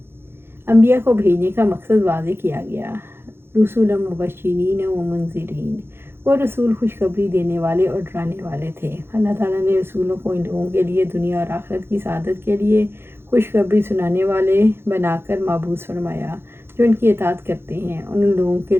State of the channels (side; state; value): left; late; 0.11 ms